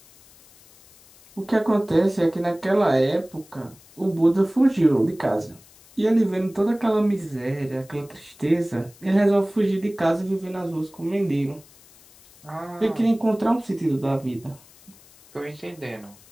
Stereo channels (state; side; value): noise; left; hiss, 26 dB below the sound